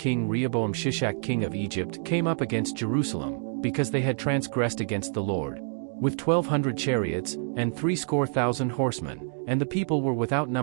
Rehoboam Shishak king of Egypt came up against Jerusalem, because they had transgressed against the Lord, with 1,200 chariots, and 70,000 horsemen, and the people were without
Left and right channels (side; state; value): left; silent; digital silence